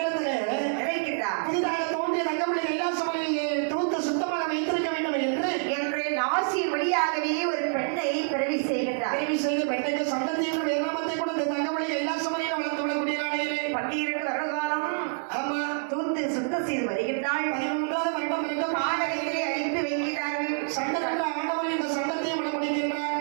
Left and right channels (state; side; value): silent; left; 60 dB below the other